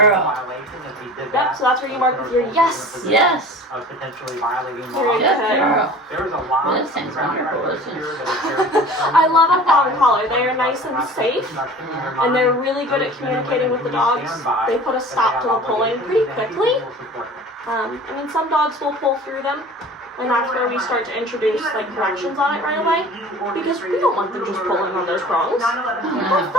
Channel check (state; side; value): normal; both; correlation 0.42